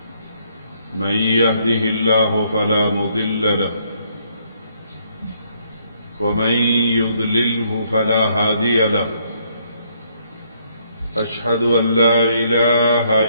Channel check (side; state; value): both; inverted; correlation -0.70